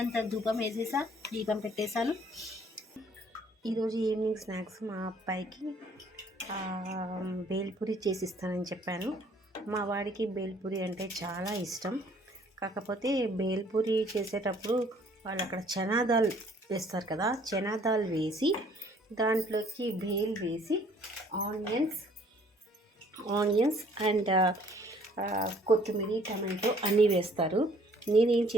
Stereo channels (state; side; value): normal; both; correlation 0.59